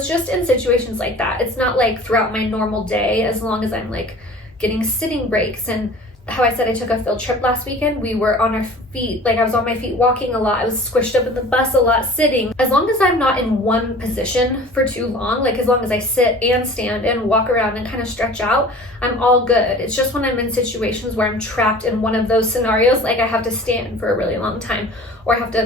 just in situations like that. It's not like throughout my normal day, as long as I'm like getting sitting breaks. And how I said I took a field trip last weekend, we were on our feet, like I was on my feet walking a lot, I was squished up in the bus a lot sitting. As long as I'm not in one position for too long, like as long as I sit and stand and walk around and kind of stretch out, I'm all good. It's just when I'm in situations where I'm trapped in one of those scenarios, like I have to stand for a really long time or I have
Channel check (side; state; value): both; normal; correlation 0.43